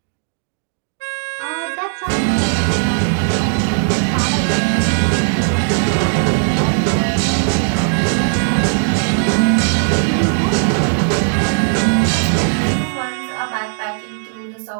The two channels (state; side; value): silent; left; 66 dB below the other